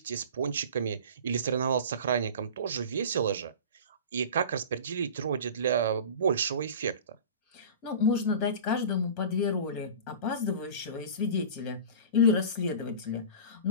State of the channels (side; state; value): both; inverted; correlation -0.36